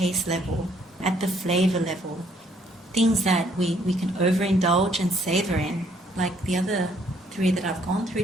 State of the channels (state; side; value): normal; both; correlation 0.66